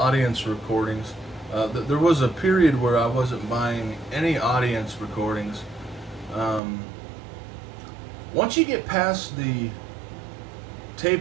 recordings. There was a period where I wasn't buying any audience recordings. Once you get past the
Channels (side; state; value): left; drops out; at 6.6 s